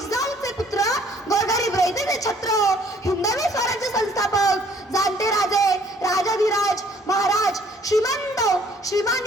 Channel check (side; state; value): both; normal; correlation 0.59